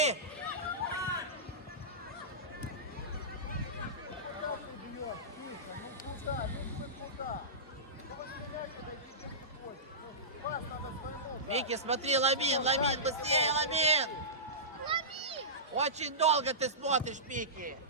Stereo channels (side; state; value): both; normal; correlation -0.18